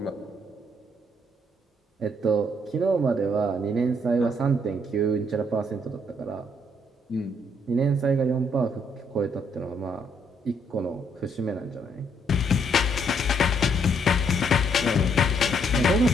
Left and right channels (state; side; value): normal; both; correlation 0.70